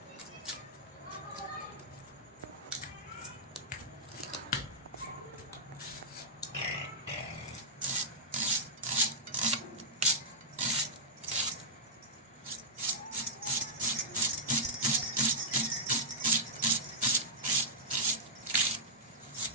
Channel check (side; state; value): both; normal; correlation -0.11